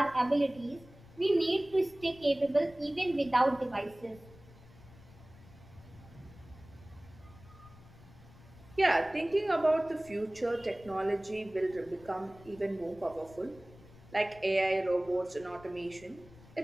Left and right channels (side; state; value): left; noise; rumble, 22 dB below the sound